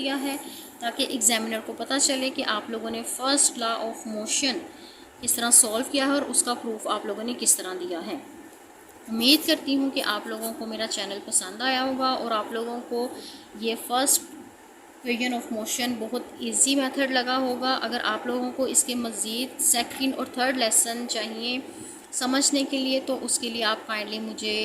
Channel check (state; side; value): identical; both; correlation 1.00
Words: है, ताकि एग्जामिनर को पता चले कि आप लोगों ने फर्स्ट लॉ ऑफ मोशन किस तरह सॉल्व किया है और उसका प्रूफ आप लोगों ने किस तरह दिया है। उम्मीद करती हूँ कि आप लोगों को मेरा चैनल पसंद आया होगा और आप लोगों को ये फर्स्ट इक्वेशन ऑफ मोशन बहुत इजी मेथड लगा होगा। अगर आप लोगों को इसके मज़ीद सेकंड और थर्ड लेसन चाहिए समझने के लिए, तो उसके लिए आप काइंडली